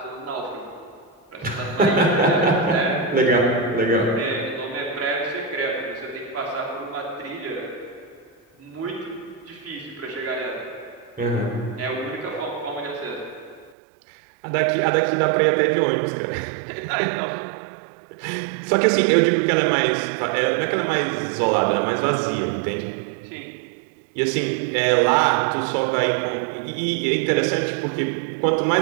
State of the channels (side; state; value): left; drops out; at 13.8 s